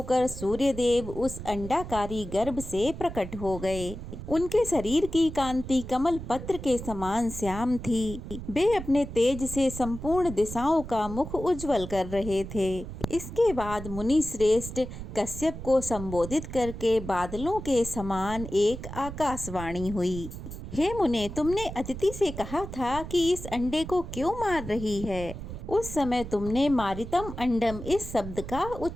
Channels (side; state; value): right; noise; rumble, 10 dB below the sound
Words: सूर्यदेव उस अंडाकारी गर्भ से प्रकट हो गए। उनके शरीर की कांति कमल पत्र के समान श्याम थी। वे अपने तेज से संपूर्ण दिशाओं का मुख उज्जवल कर रहे थे। इसके बाद मुनि श्रेष्ठ कश्यप को संबोधित करके बादलों के समान एक आकाशवाणी हुई। हे मुने, तुमने अदिति से कहा था कि इस अंडे को क्यों मार रही है। उस समय तुमने मारितम अंडम इस शब्द का